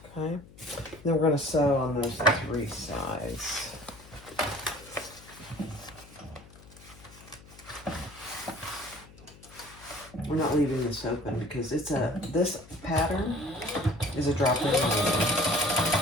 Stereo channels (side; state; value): left; noise; hum, 22 dB below the sound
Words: Okay, then we're going to sew on those 3 sides. We're not leaving this open because this pattern is a drop-in lining.